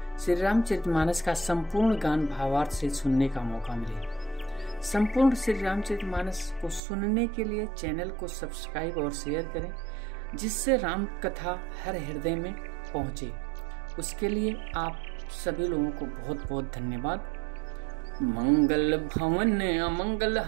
श्री रामचरितमानस का संपूर्ण गान भावार्थ से सुनने का मौका मिले। संपूर्ण श्री रामचरितमानस को सुनने के लिए चैनल को सब्सक्राइब और शेयर करें, जिससे राम कथा हर हृदय में पहुंचे। उसके लिए आप सभी लोगों को बहुत बहुत धन्यवाद। मंगल भवन अमंगल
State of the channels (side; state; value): left; drops out; at 6.8 s